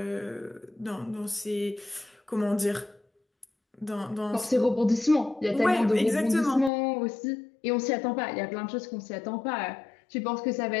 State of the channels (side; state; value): right; drops out; at 6.7 s